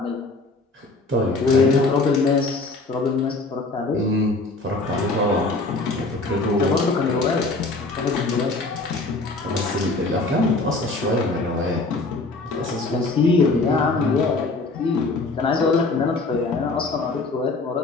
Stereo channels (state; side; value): quieter; right; 3.3 dB